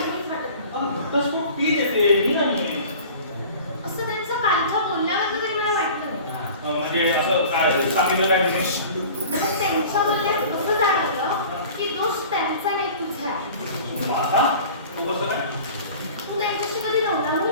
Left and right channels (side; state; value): both; inverted; correlation -0.42